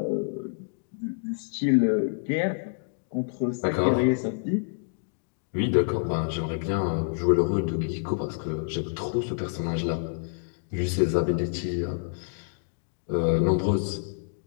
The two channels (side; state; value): right; silent; digital silence